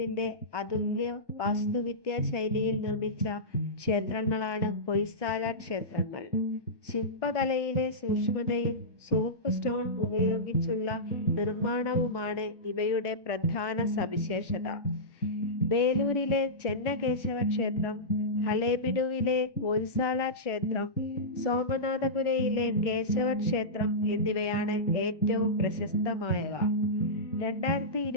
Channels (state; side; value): late; right; 1.2 ms